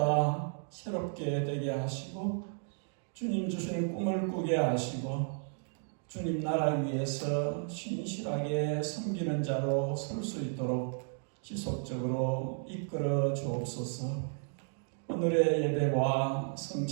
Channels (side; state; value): left; silent; 55 dB below the other